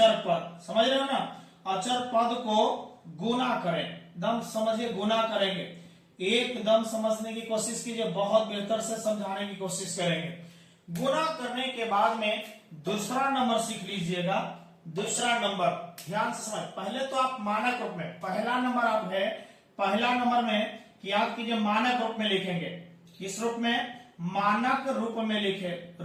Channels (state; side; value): identical; both; correlation 1.00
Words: पद। समझ रहे हो ना? अचर पद को गुना करें। एकदम समझिए, गुना करेंगे। एकदम समझने की कोशिश कीजिए, बहुत बेहतर से समझाने की कोशिश करेंगे। गुना करने के बाद में दूसरा नंबर सीख लीजिएगा। दूसरा नंबर ध्यान से समझ। पहले तो आप मानक रूप में, पहला नंबर आप है, पहला नंबर में याद कीजिए मानक रूप में लिखेंगे। किस रूप में? मानक रूप में लिखे,